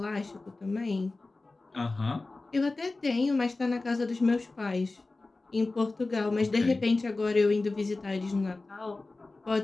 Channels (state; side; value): quieter; right; 3.3 dB